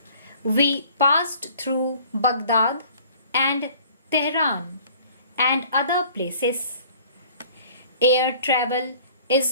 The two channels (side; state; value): both; inverted; correlation -0.52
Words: we passed through Baghdad and Tehran and other places. Air travel